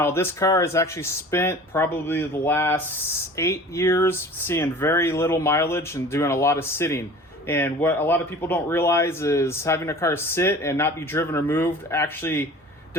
this car has actually spent probably the last 8 years seeing very little mileage and doing a lot of sitting. And what a lot of people don't realize is having a car sit and not be driven or moved actually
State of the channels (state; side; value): normal; both; correlation 0.42